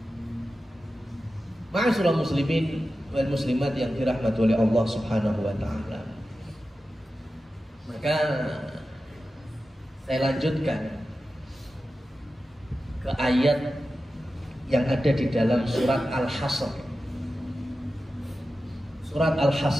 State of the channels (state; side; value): normal; both; correlation 0.93